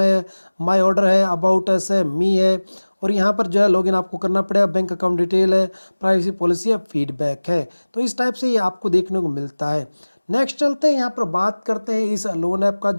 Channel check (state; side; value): inverted; both; correlation -1.00